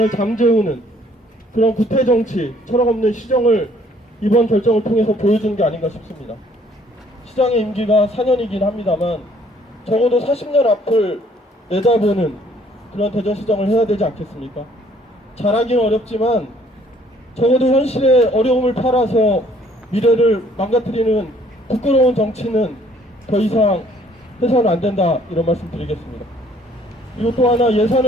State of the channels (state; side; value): normal; both; correlation 0.61